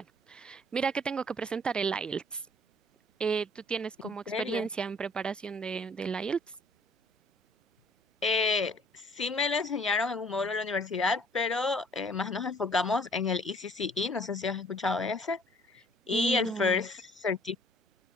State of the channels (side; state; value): both; normal; correlation 0.56